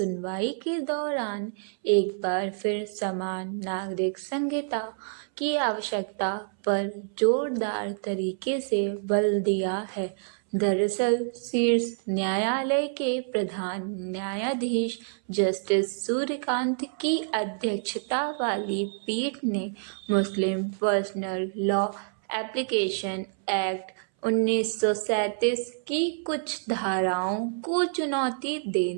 के दौरान एक बार फिर समान नागरिक संहिता की आवश्यकता पर जोरदार तरीके से बल दिया है। दरअसल शीर्ष न्यायालय के प्रधान न्यायाधीश जस्टिस सूर्यकांत की अध्यक्षता वाली पीठ ने मुस्लिम पर्सनल लॉ एप्लीकेशन एक्ट 1937 की कुछ धाराओं को चुनौती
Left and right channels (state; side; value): silent; left; 60 dB below the other